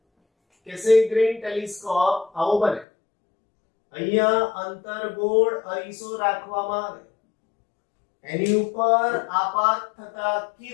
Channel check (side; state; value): right; drops out; at 2.9 s